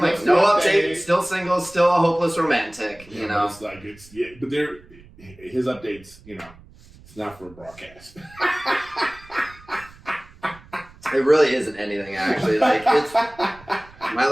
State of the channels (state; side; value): noise; right; rumble, 23 dB below the sound